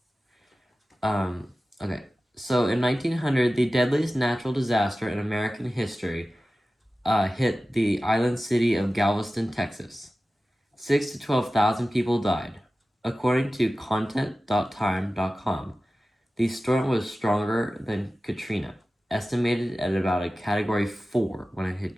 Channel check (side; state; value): both; normal; correlation 0.95